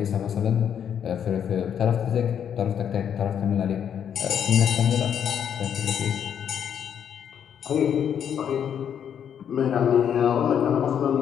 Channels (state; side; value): quieter; right; 8.6 dB